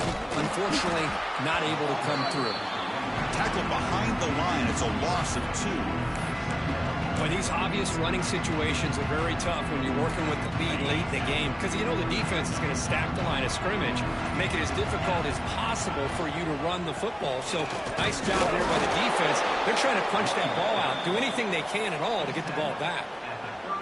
Unfortunately, not able to come through. Tackle behind the line. It's a loss of 2. But these obvious running situations are very tough when you're working with the lead late in the game, because you know the defense is going to stack the line of scrimmage, make it as difficult as possible for you to run the football. So nice job there by the defense. They're trying to punch that ball out, do anything they can at all to get the ball back.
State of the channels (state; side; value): identical; both; correlation 1.00